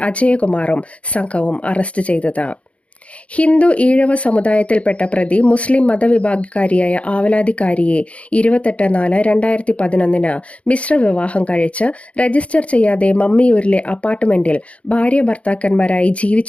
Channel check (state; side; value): late; right; 0.063 ms